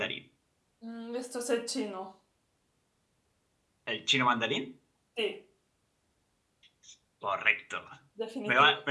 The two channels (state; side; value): identical; both; correlation 1.00